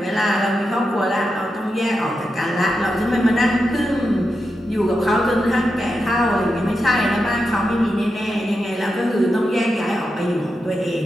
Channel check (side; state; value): both; normal; correlation 0.88